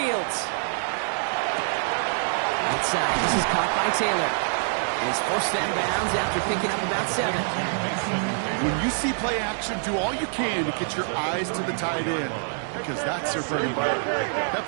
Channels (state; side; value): silent; left; 61 dB below the other